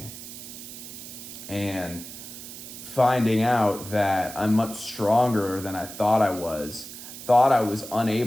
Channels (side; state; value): right; noise; hiss, 12 dB below the sound